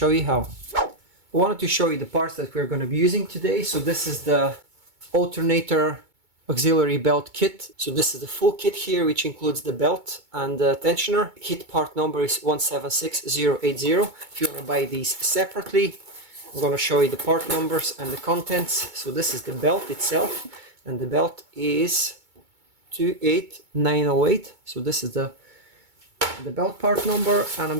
you how. I wanted to show you the parts that we're going to be using today. So this is the alternator auxiliary belt kit. So this is the full kit here, which includes the belt and the tensioner. Kit part number is 176080. If you want to buy these separately, I'm going to show you the part numbers and the contents. So this is the belt itself, and the belt is 28908. So this is the belt part number, and I'm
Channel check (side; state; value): left; late; 2.2 ms